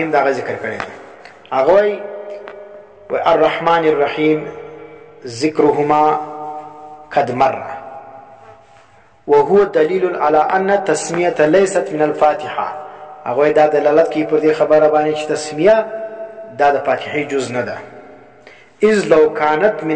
دا ذکر کړی دی، هغه وایي الرحمن الرحیم ذکرهما قد مر وهو دلیل على ان التسمیه لیست من الفاتحه. هغه دا دلالت کوي پر دې خبره باندې چې تسمیه دا د فاتحه جز نه ده. اذ لو كانت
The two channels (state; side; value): identical; both; correlation 1.00